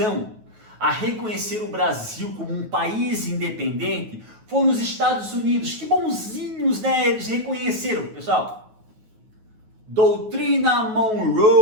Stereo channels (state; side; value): late; left; 9.4 ms